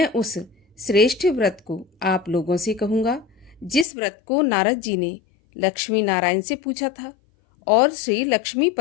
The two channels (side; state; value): right; drops out; at 3.9 s